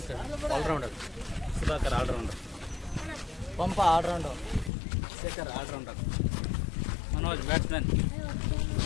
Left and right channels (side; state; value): right; drops out; at 4.7 s